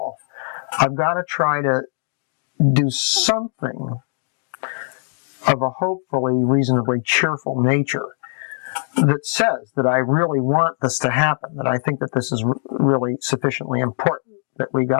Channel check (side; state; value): right; silent; 65 dB below the other